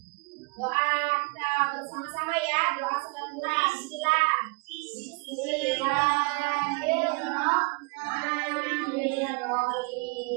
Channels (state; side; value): quieter; left; 28.9 dB